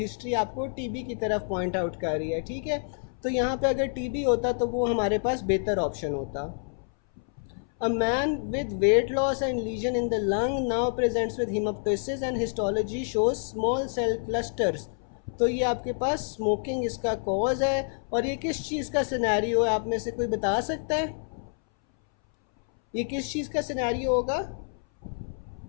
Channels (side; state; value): right; silent; 59 dB below the other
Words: आपको टीबी की तरफ पॉइंट आउट कर रही है. ठीक है, तो यहाँ पे अगर टीबी होता तो वो हमारे पास बेहतर ऑप्शन होता. A man with weight loss and lesion in the lung now presents with hemoptysis and histology shows small cell clusters. तो ये आपके पास स्मोकिंग इसका कॉज है. और ये किस चीज़ का सिनेरियो है, आप में से कोई बता सकता है ये किस चीज़ का सिनेरियो होगा?